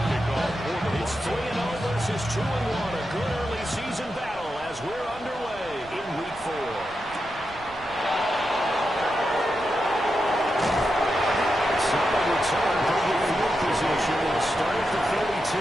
It's 3-0 versus 2-1, a good early season battle as we're underway in week 4. Solid return from the field position and start at the 32.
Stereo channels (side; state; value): right; noise; rumble, 20 dB below the sound